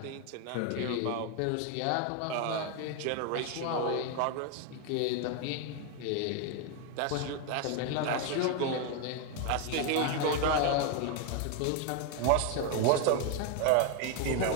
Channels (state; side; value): different; both; correlation 0.01